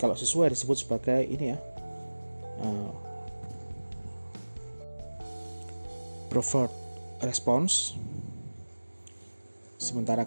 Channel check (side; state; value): both; inverted; correlation -1.00